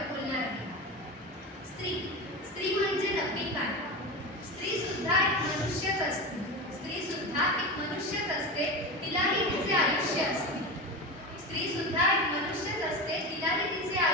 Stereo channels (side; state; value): both; normal; correlation 0.23